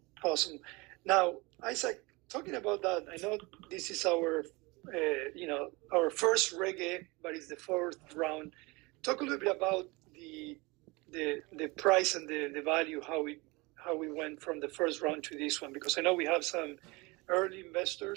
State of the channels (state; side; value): quieter; left; 24.9 dB